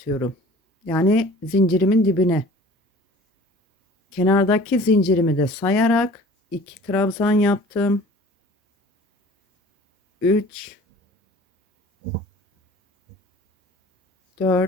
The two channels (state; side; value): normal; both; correlation 0.47